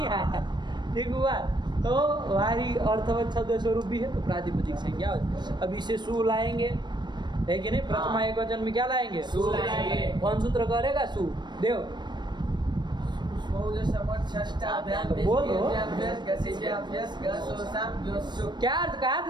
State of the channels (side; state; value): left; late; 0.22 ms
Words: आया? ठीक हुआ? तो वारी अर्थवत शब्द स्वरूप भी है, तो प्रातिपदिक संज्ञा। अब इसे सु लाएंगे, है कि नहीं? प्रथमा एक वचन में क्या लाएंगे? सु लाएंगे। कौन सूत्र करेगा? सु देव। बोलो क्या अर्थ कहा